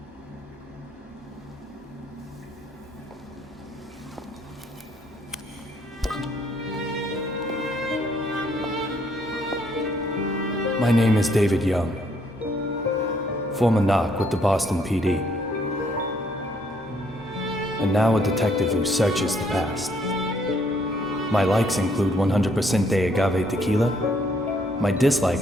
My name is David Young, former knock with the Boston PD, and now a detective who searches the past. My likes include 100% de agave tequila. My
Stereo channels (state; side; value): normal; both; correlation 0.68